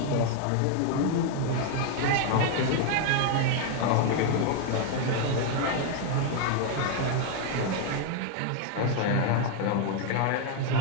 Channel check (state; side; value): different; both; correlation 0.00